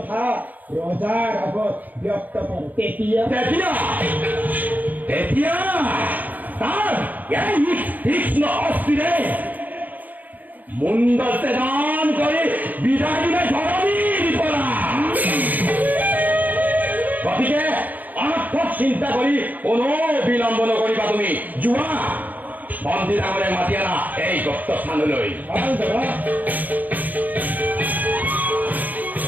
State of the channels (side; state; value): left; late; 0.082 ms